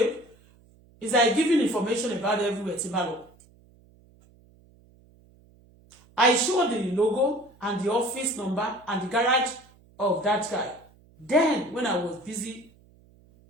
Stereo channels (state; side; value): noise; right; hum, 29 dB below the sound